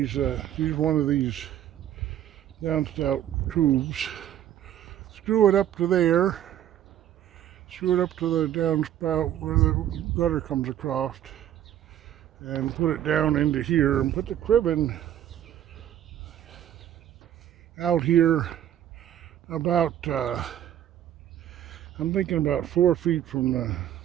use one of these downspout tubes, screw it up to there, screw it up to the downspout where the gutter comes across, and put it down into here and put the cribbing out here about, I'm thinking about 4 feet from the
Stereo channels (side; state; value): left; quieter; 11.3 dB